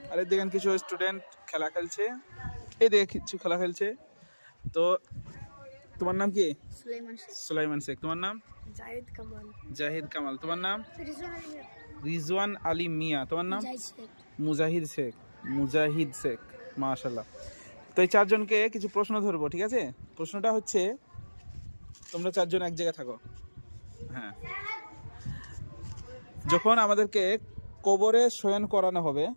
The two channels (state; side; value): inverted; both; correlation -1.00